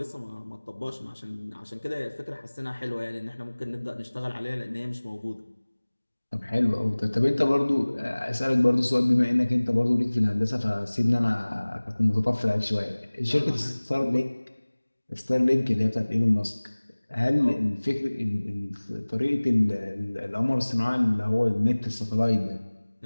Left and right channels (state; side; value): inverted; both; correlation -1.00